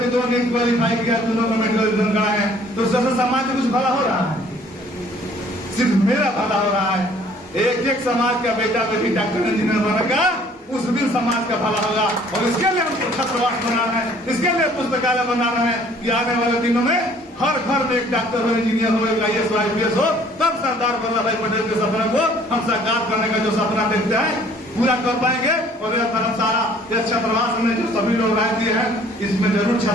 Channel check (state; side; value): normal; both; correlation 0.57